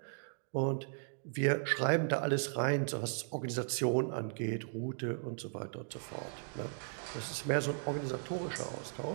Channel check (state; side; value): silent; left; digital silence